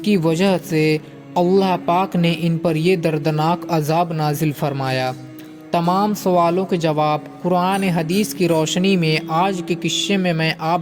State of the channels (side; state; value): both; identical; correlation 1.00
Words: کی وجہ سے اللہ پاک نے ان پر یہ دردناک عذاب نازل فرمایا؟ تمام سوالوں کے جواب قرآن حدیث کی روشنی میں آج کے قصے میں